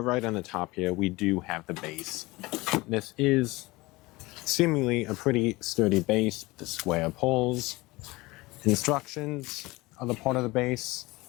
right on the top here, we do have the base. This is seemingly a pretty sturdy base with the square poles. Instructions are the part of the base.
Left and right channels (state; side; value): quieter; right; 21.6 dB